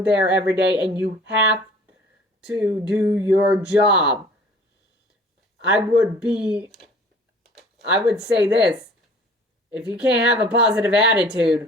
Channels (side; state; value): both; normal; correlation 0.49